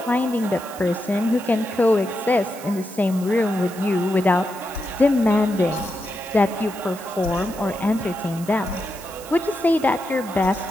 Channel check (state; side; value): noise; right; hiss, 17 dB below the sound